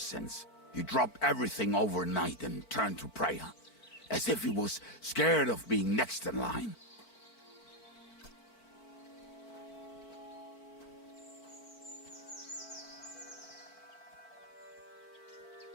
He dropped everything overnight and turned to prayer. As if he was scared of being next in line.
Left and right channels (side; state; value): right; late; 4.5 ms